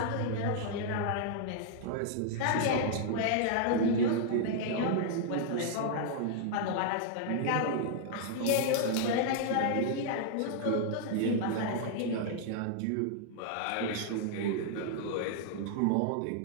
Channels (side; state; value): both; different; correlation -0.01